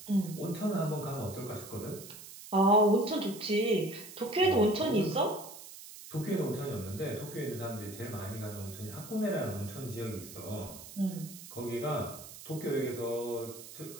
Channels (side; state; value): right; noise; hiss, 15 dB below the sound